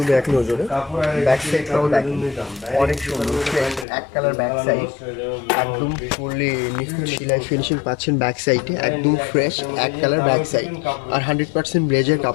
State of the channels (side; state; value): right; drops out; at 3.9 s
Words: এক নজরে। ব্যাক সাইডটাও দেখেন অনেক সুন্দর, এক কালার ব্যাক সাইড, একদম ফুললি নিখুঁত সেলাই ফিনিশিং পাচ্ছেন ব্যাক সাইডে, একদম ফ্রেশ এক কালার ব্যাক সাইড। আর 100% ব্লেজার